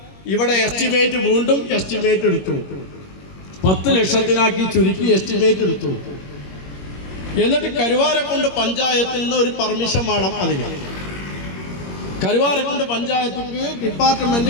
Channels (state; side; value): late; right; 21 ms